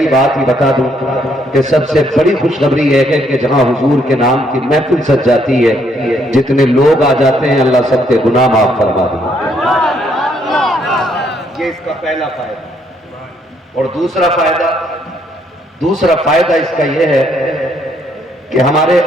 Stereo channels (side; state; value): both; normal; correlation 0.70